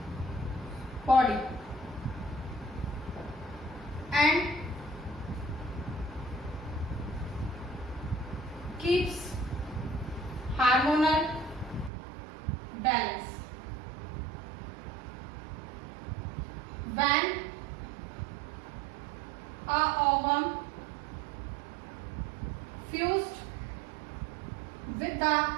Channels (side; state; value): left; drops out; at 11.9 s